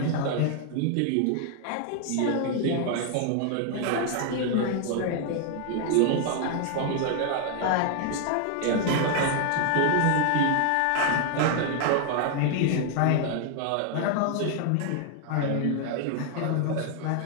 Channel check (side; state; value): both; different; correlation 0.00